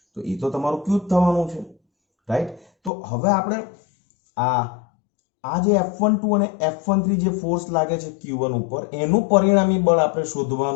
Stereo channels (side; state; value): right; drops out; at 2.9 s